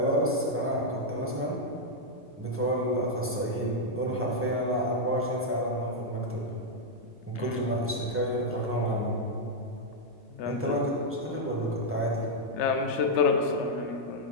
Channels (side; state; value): both; normal; correlation -0.03